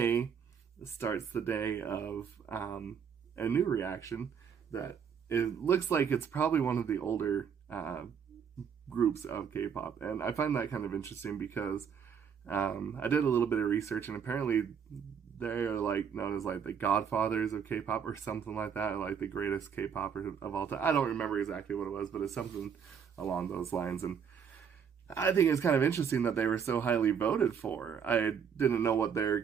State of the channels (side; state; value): left; quieter; 7.2 dB